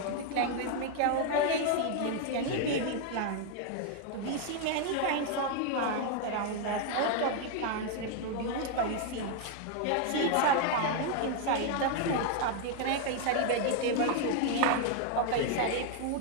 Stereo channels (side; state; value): both; different; correlation 0.00